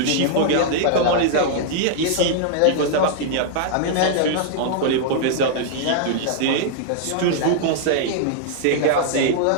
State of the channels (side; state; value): both; different; correlation -0.01